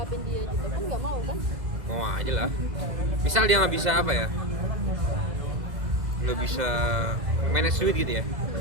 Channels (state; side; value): late; left; 2.0 ms